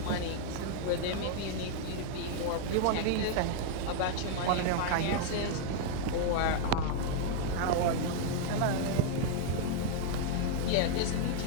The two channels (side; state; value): both; different; correlation 0.00